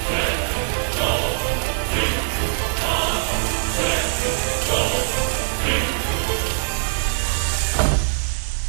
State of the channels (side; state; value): left; silent; digital silence